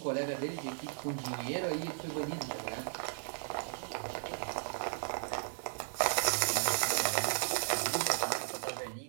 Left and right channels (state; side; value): silent; left; digital silence